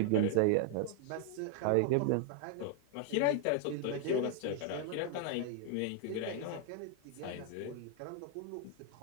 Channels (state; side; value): different; both; correlation 0.00